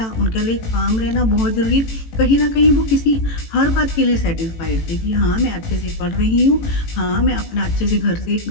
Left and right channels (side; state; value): right; late; 18 ms